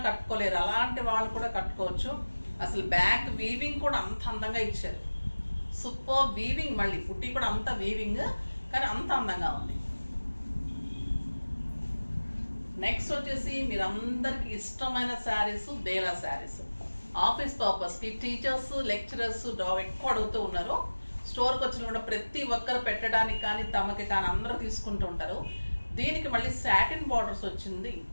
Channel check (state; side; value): inverted; both; correlation -1.00